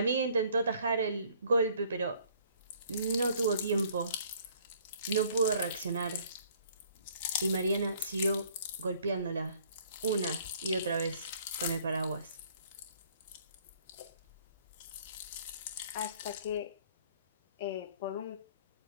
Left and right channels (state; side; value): inverted; both; correlation -0.58